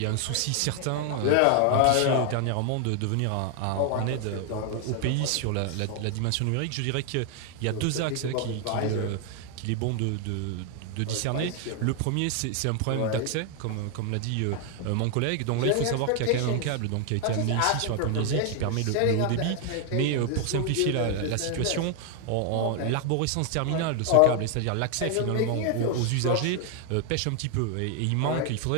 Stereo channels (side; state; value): both; different; correlation 0.00